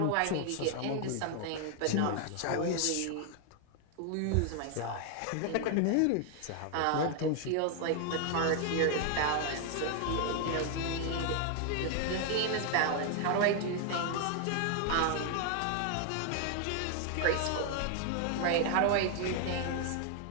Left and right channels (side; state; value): both; different; correlation 0.00